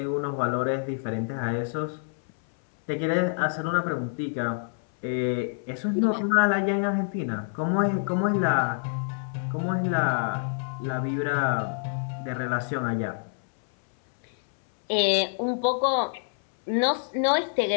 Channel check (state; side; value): silent; right; 60 dB below the other